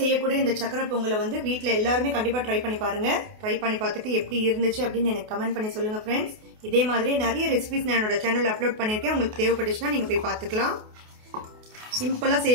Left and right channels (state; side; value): late; left; 28 ms